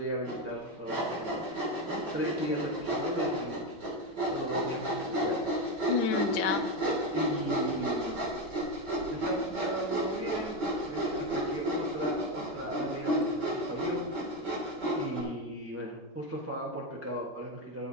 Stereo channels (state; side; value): normal; both; correlation 0.12